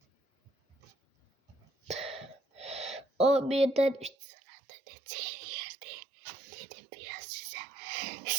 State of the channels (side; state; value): left; drops out; at 4.2 s